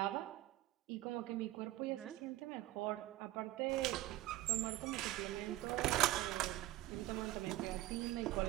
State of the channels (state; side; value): quieter; left; 16.4 dB